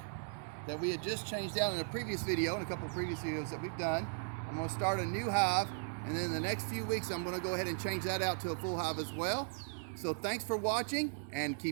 that we had just changed out in a previous video, in a couple of previous videos that we've done. I'm gonna start a new hive, and then in the next few weeks I'm gonna go ahead and change that out to a full hive as well. So thanks for watching, and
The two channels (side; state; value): left; silent; 53 dB below the other